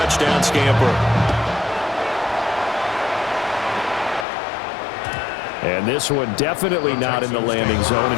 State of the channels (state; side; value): drops out; right; at 4.2 s